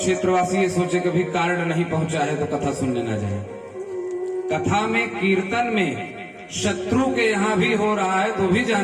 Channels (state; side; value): identical; both; correlation 1.00